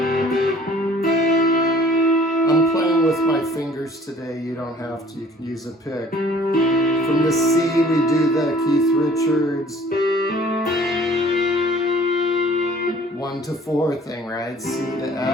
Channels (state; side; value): normal; both; correlation 0.52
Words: I'm playing with my fingers today, you don't have to, you can use a pick. From the C, we do the Keith Richards 1 to 4 thing, right? C to